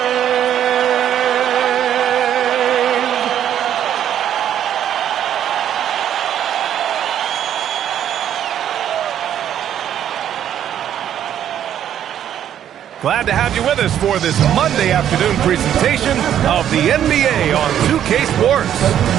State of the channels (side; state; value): left; quieter; 10.3 dB